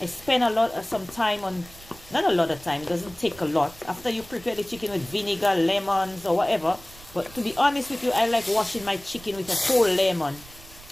I spend some time on, not a lot of time, it doesn't take a lot. After you prepare the chicken with vinegar, lemons, or whatever. But to be honest with you, I like washing my chicken with a whole lemon.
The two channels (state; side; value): noise; right; rumble, 21 dB below the sound